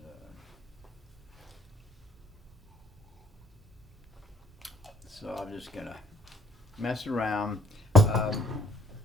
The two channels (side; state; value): both; normal; correlation 0.61